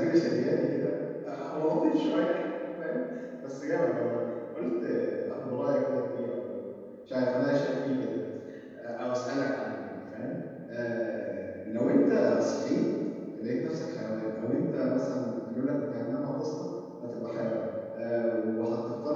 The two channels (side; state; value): both; identical; correlation 1.00